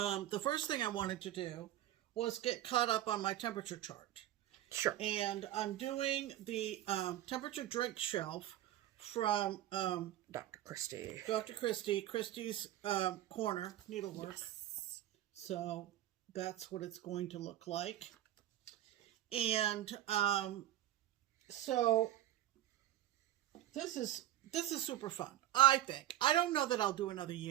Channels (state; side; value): quieter; left; 13.3 dB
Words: first thing I wanted to do was get caught up on my temperature chart. Sure. And I'm doing the temperature drink shelf from Dr. Christie. Christie's Corner Needlework. Yes. So that's what it's going to look like. And so this is super fun, I think. I don't know that I'll do another